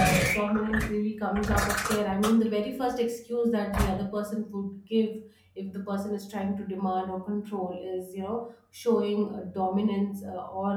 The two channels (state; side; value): identical; both; correlation 1.00